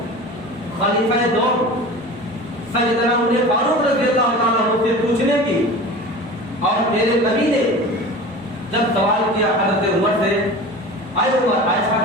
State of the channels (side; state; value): both; normal; correlation 0.35